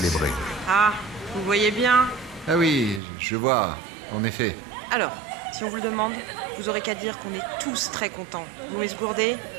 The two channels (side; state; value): left; drops out; at 3.0 s